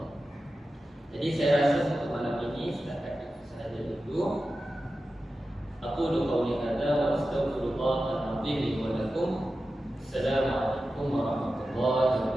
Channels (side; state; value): both; normal; correlation 0.93